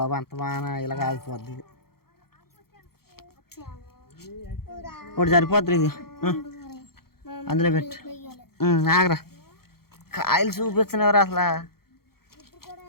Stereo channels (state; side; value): late; right; 0.94 ms